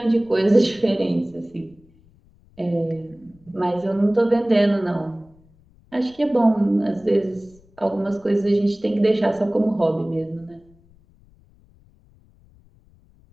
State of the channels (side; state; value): left; noise; rumble, 30 dB below the sound